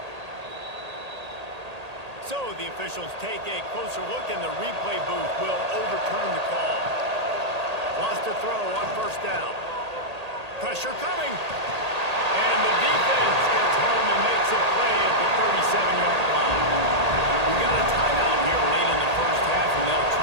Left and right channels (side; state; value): left; late; 1.8 ms